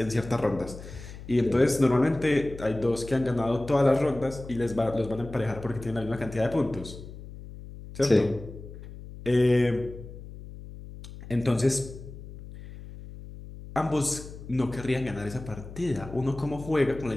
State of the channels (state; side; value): noise; left; hum, 14 dB below the sound